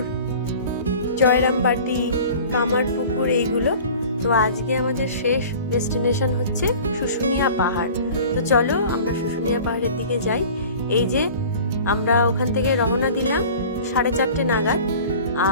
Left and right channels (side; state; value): both; inverted; correlation -0.43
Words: জয়রামবাটি, কামারপুকুর এইগুলো। তো আজকে আমাদের শেষ ডেস্টিনেশন হচ্ছে শুশুনিয়া পাহাড়। তো চলো আমরা শুশুনিয়া পাহাড়ের দিকে যাই। এই যে আমরা ওখান থেকে রওনা দিলাম 4:30 নাগাদ,